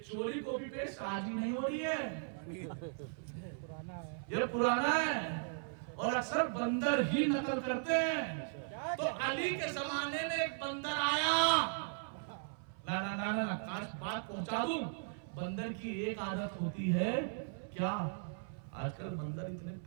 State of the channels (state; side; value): silent; left; 53 dB below the other